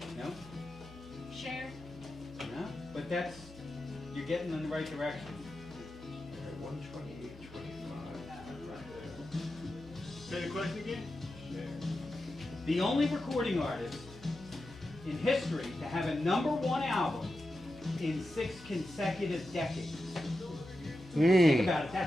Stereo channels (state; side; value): normal; both; correlation 0.90